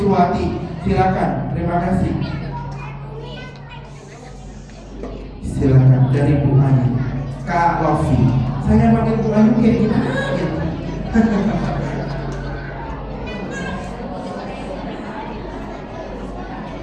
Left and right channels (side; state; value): both; identical; correlation 1.00